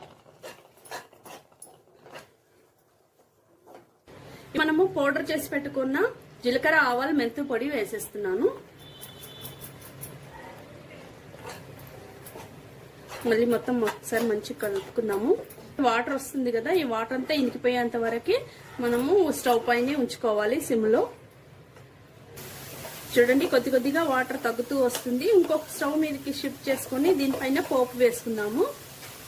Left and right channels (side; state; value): both; identical; correlation 1.00